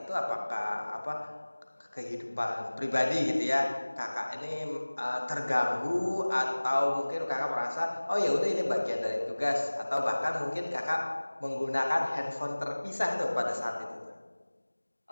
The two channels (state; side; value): inverted; both; correlation -1.00